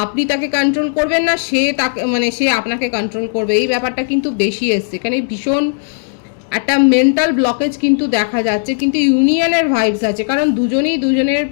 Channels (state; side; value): silent; right; digital silence